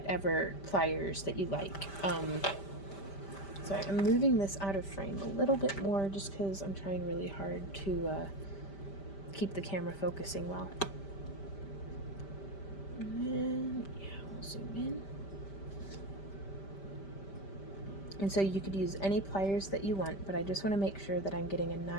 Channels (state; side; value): late; right; 5.1 ms